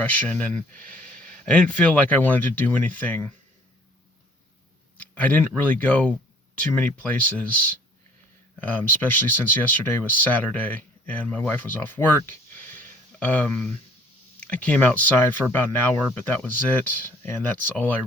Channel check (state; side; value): normal; both; correlation 0.56